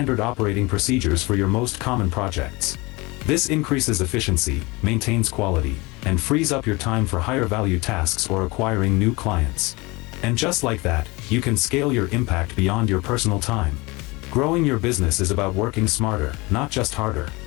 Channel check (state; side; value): quieter; right; 24.5 dB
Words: operating procedures for your most common projects. This increases efficiency, maintains quality, and frees up your time for higher value tasks or acquiring new clients. And just like that, you can scale your impact beyond your personal time. Growing your business is about working smarter, not just harder.